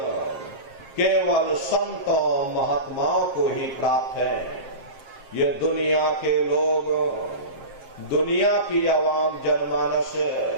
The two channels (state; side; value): late; left; 7.5 ms